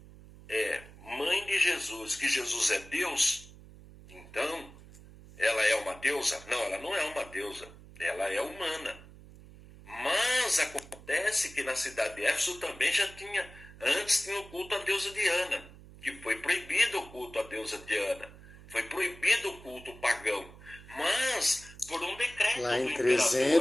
é mãe de Jesus, que Jesus é Deus, então ela é uma deusa? Não, ela não é uma deusa, ela é humana. Mas acontece que na cidade de Éfeso também antes tinha o culto à deusa Diana, que foi proibido o culto à deusa Diana. Foi proibido o culto pagão, mas por um decreto Lá do em imperador.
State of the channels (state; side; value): noise; right; hum, 19 dB below the sound